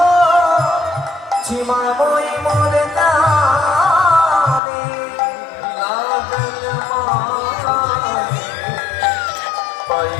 সীমায় মই মরে জানি লাগল মায়ে পাই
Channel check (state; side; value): drops out; right; at 4.6 s